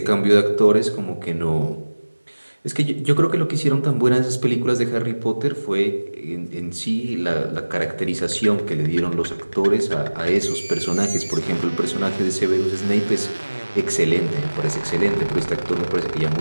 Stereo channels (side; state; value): both; inverted; correlation -1.00